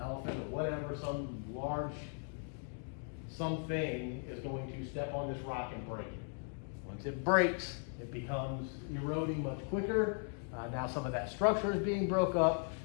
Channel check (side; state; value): right; silent; 52 dB below the other